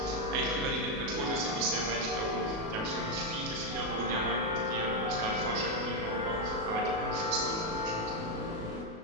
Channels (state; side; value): late; left; 37 ms